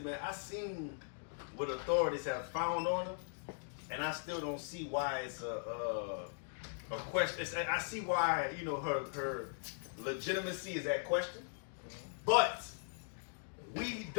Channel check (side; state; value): right; silent; digital silence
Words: I seen what authorities have found on her, and I still don't see why it's a question. I see why, you know, her legitimacy is at question, but we